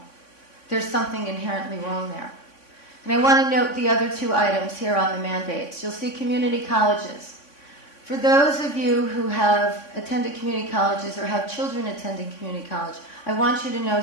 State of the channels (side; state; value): right; late; 3.5 ms